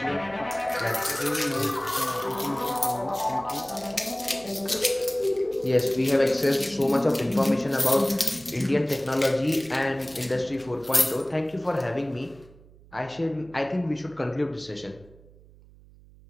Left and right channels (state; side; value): noise; right; hum, 24 dB below the sound